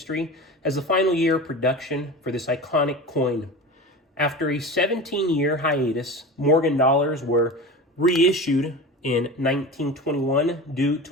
as the final year of production for this iconic coin. After a 17-year hiatus, Morgan dollars were reissued in 1921 due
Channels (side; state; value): both; normal; correlation 0.30